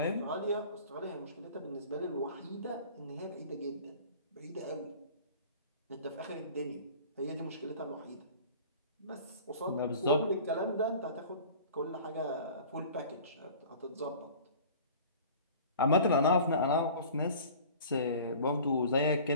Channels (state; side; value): inverted; both; correlation -0.44